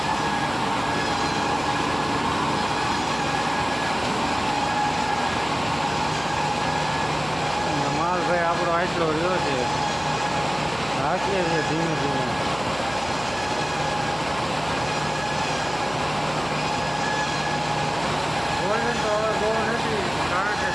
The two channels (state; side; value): noise; right; hum, 16 dB below the sound